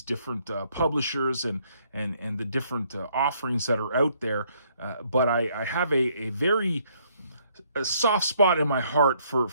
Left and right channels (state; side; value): inverted; both; correlation -0.68